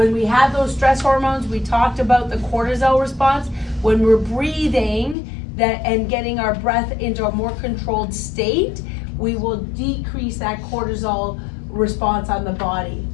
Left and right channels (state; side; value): drops out; right; at 5.2 s